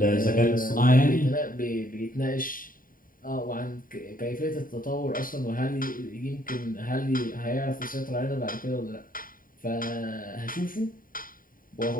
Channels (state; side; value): late; right; 0.41 ms